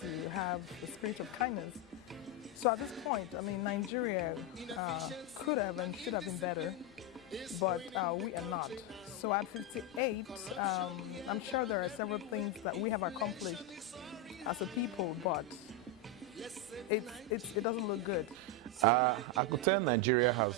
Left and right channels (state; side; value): normal; both; correlation 0.05